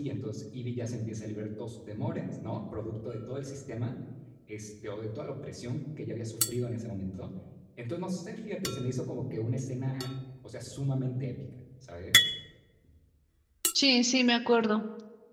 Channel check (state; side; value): identical; both; correlation 1.00